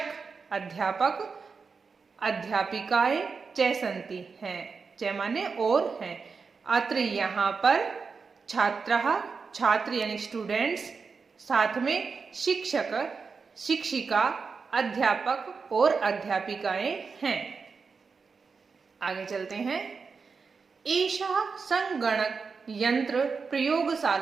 अध्यापक अध्यापिकाएं, च सन्ति हैं, च माने और हैं। अत्र यहाँ पर छात्राः छात्र यानी स्टूडेंट्स, साथ में शिक्षक शिक्षिका अध्यापक और अध्यापिकाएं हैं। आगे चलते हैं। एषा संगणक यंत्र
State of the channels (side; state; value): left; quieter; 5.0 dB